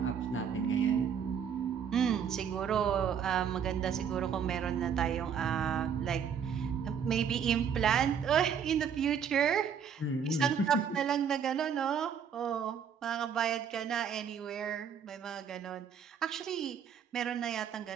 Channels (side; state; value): left; quieter; 7.5 dB